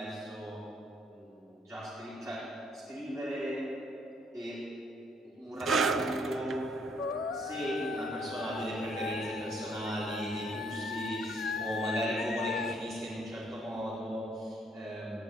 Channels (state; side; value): normal; both; correlation 0.67